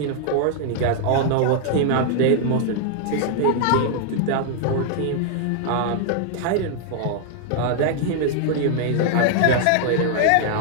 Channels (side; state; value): both; different; correlation 0.00